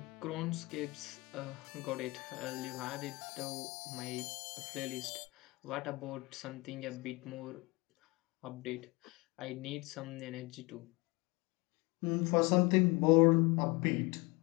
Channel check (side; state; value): right; quieter; 25.0 dB